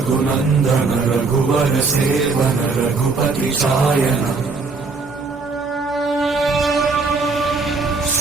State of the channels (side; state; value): left; quieter; 4.1 dB